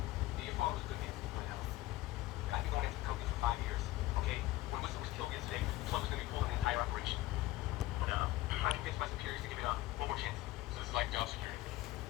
Your father was a good man. I know. I've been going after the company for 5 years. Okay? When Whistler was killed yesterday, the plug was going to be pulled on the entire operation. I convinced my superiors to give it one more chance. So this is like job security.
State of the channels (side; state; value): right; quieter; 17.0 dB